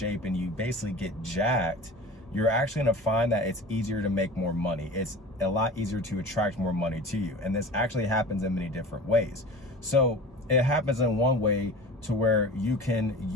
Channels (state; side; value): normal; both; correlation 0.36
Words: and you basically get jacked, you're actually going to find that it's easier to make more money. It's a lot easier to attract more money to you. And this actually happens in many different ways. So it happens in one way to where you can